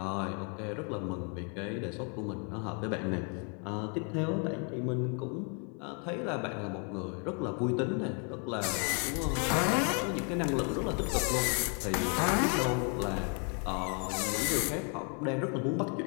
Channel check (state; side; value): quieter; right; 38.3 dB